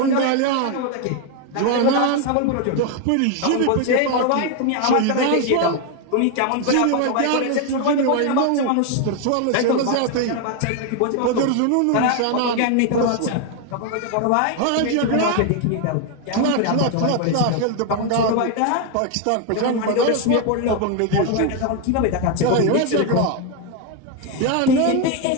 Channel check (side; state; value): both; different; correlation 0.01